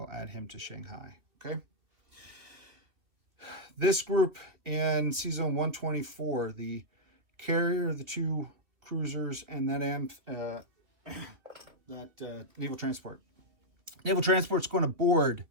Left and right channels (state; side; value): late; left; 2.4 ms